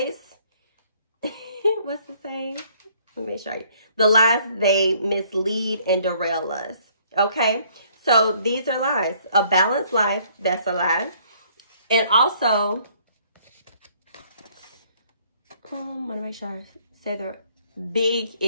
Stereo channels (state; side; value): inverted; both; correlation -0.62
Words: What's the saying? Let me show you. The lies they mislead and derail us. Okay? So these are lies. A balanced life, that's a lie. And also, let me make sure I say big